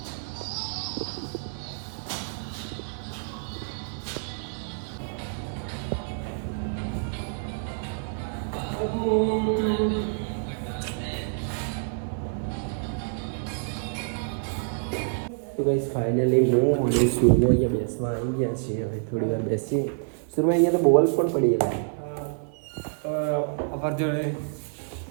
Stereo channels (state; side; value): silent; left; digital silence